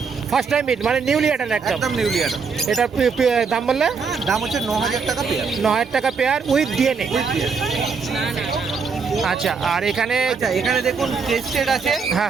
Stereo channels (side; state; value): left; quieter; 5.4 dB